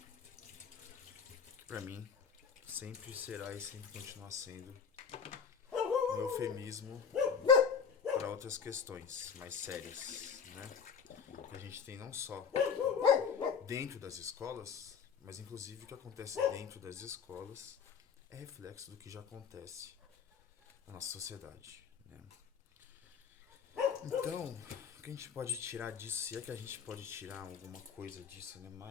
que pra mim sempre será e sempre continuará sendo um eufemismo para outras questões mais sérias, né? Que a gente tem não só dentro das escolas, mas inclusive o que acontece dentro das escolas é reflexo do que já acontece na nossa sociedade, né? Então, o que a gente pode tirar disso, se é que a gente pode tirar alguma coisa disso, né?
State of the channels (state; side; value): quieter; right; 6.6 dB